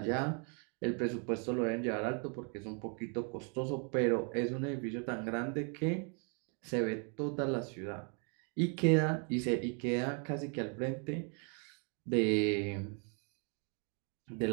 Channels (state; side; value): quieter; left; 39.3 dB